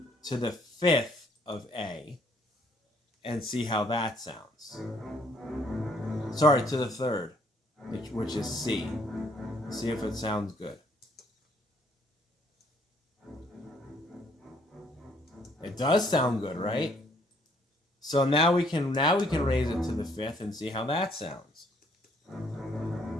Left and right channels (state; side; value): normal; both; correlation 0.65